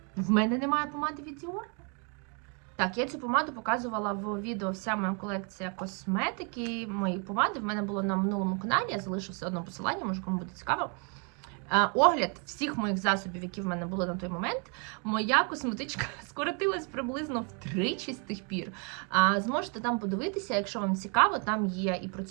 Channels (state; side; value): quieter; left; 36.9 dB